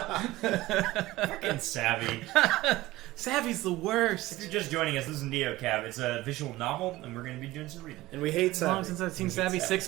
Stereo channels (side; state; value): left; quieter; 18.0 dB